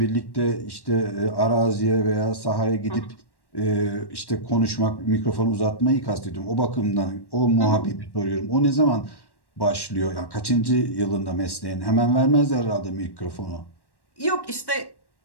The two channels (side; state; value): right; late; 1.1 ms